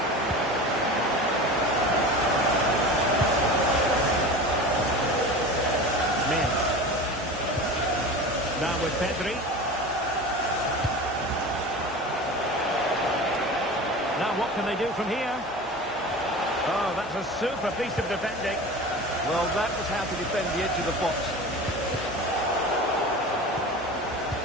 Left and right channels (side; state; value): both; normal; correlation 0.33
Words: Now with Pedri. Now what can they do from here? Oh, that's a super piece of defending. Well, that was how to defend the edge of the box.